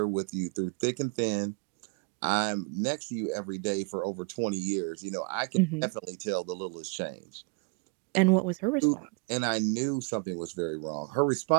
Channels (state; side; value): quieter; left; 33.6 dB